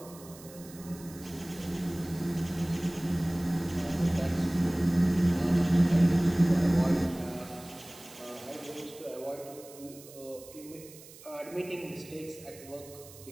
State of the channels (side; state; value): right; noise; hiss, 19 dB below the sound